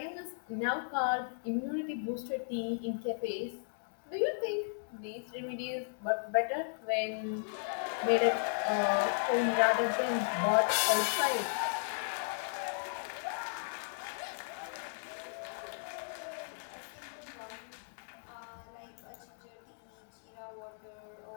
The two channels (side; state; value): right; silent; digital silence